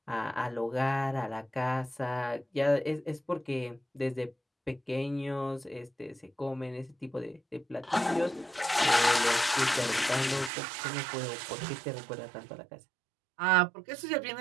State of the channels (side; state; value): left; drops out; at 10.5 s